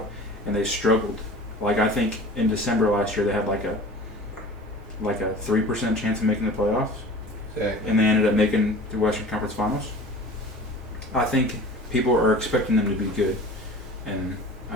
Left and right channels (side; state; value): both; normal; correlation 0.41